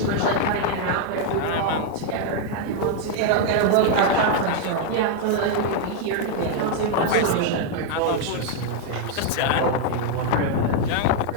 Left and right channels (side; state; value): both; different; correlation 0.00